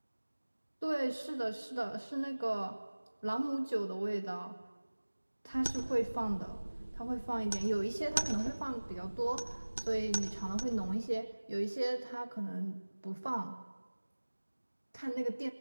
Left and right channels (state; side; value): inverted; both; correlation -1.00